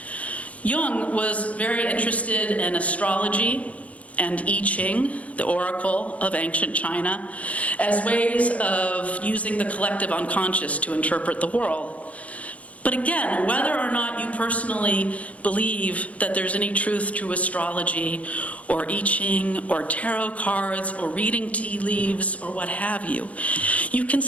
Jung was very interested in astrology and I Ching, the oracle of ancient China, as ways of using the collective unconscious to interpret the world. But again, whether or not you personally believe that there's any truth to astrology or I Ching or tarot cards or reading tea leaves or what have you, you can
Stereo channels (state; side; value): late; right; 0.067 ms